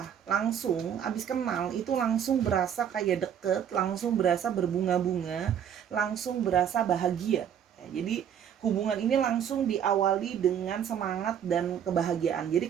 langsung abis kenal itu langsung berasa kayak deket, langsung berasa berbunga-bunga, langsung berasa bahagia ya, jadi hubungan ini langsung diawali dengan semangat dan kebahagiaan.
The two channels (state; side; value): quieter; left; 8.8 dB